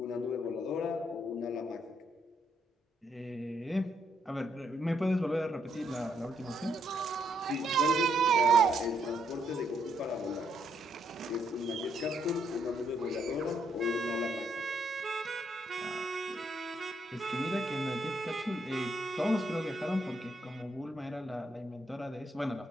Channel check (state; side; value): normal; both; correlation 0.75